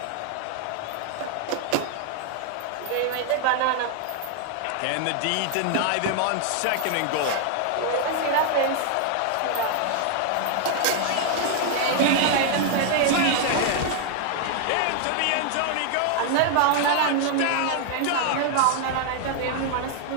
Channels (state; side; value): different; both; correlation 0.00